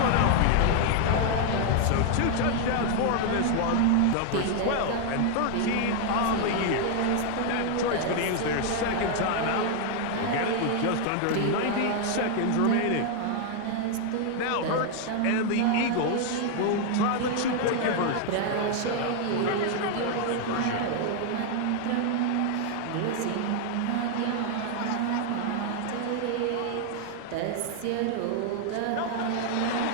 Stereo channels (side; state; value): both; different; correlation 0.00